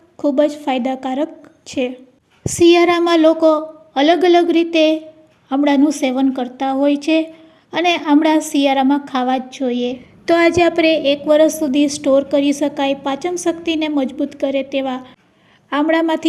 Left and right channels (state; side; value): identical; both; correlation 1.00